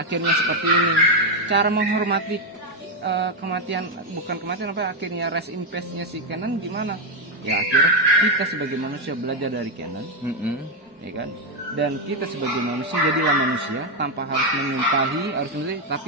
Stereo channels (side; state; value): both; normal; correlation 0.04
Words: seperti ini. Cara menghormati kematian, bukan kematian akhirnya rest in peace-nya si K9 gimana ya, akhirnya kita sebagai manusia belajar dari K9 ya kan. Dan kita sebagai manusia jadilah manusia tanpa harus menyumpahi, tapi